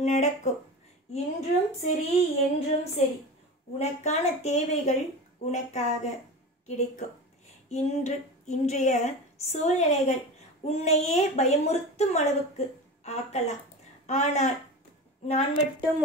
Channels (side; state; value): both; normal; correlation 0.29